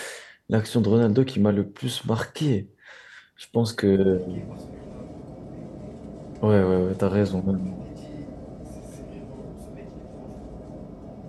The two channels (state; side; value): identical; both; correlation 1.00